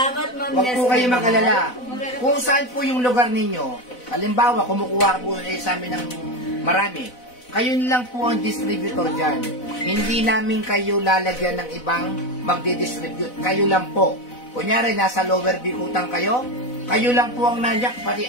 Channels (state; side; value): late; right; 4.0 ms